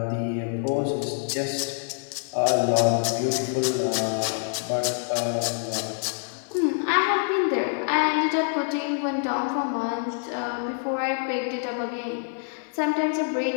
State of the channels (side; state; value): right; silent; digital silence